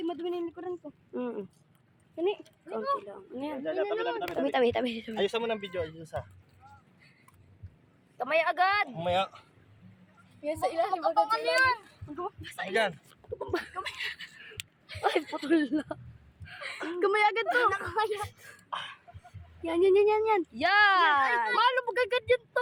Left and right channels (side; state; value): both; identical; correlation 1.00